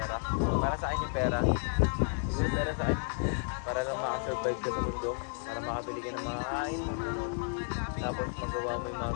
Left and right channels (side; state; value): right; silent; 56 dB below the other